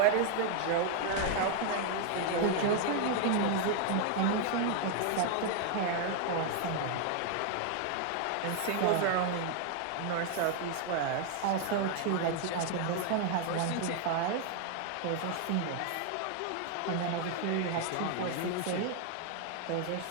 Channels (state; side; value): different; both; correlation 0.00